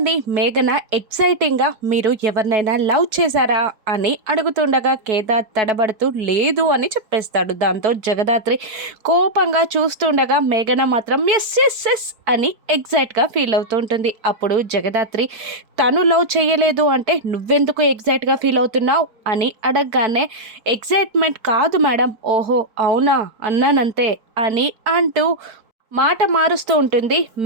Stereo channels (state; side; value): late; left; 4.6 ms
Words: మేఘన ఎక్సైటింగ్గా మీరు ఎవరినైనా లవ్ చేశారా అని అడుగుతుండగా కేదార్ తడబడుతూ లేదు అని చెప్పేస్తాడు. దాంతో జగదాత్రి కోపంగా చూస్తుండగా మేఘన మాత్రం ఎస్ ఎస్ ఎస్ అని ఎగ్జైట్గా ఫీల్ అవుతూ ఉంటుంది. అప్పుడు జగదాత్రి తను లవ్ చేయలేదు అంటే నువ్వెందుకు ఎగ్జైట్గా ఫీల్ అవుతున్నావు అని అడగగానే ఎగ్జైట్మెంట్ కాదు మేడం, ఓహో అవునా అన్నానంతే అని అంటూ మాట మారుస్తూ ఉంటుంది